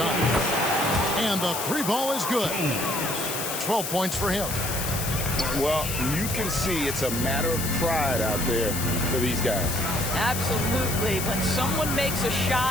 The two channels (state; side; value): noise; left; hiss, 4 dB below the sound